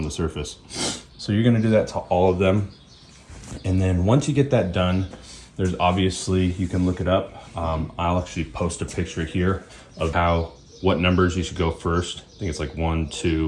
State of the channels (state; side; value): identical; both; correlation 1.00